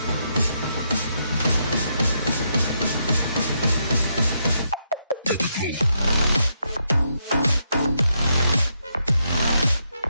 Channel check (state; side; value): inverted; both; correlation -0.79